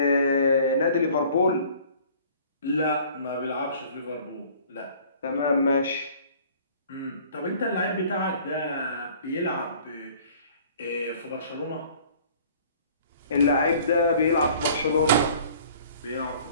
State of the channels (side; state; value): both; inverted; correlation -0.52